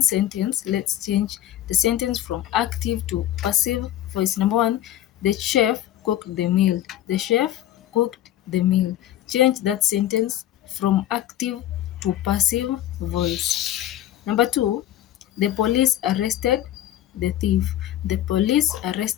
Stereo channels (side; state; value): right; quieter; 12.5 dB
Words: sentence, let's change the sentence from active to passive voice. Number one, the chef cooked the meal. The chef cooked the meal. Change that sentence from active to passive voice. Number two, the police arrested the thief. The police